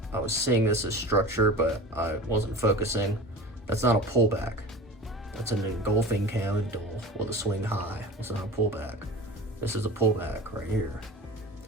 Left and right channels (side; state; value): both; normal; correlation 0.35